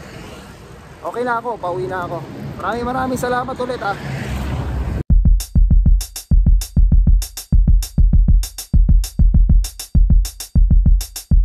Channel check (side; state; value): both; identical; correlation 1.00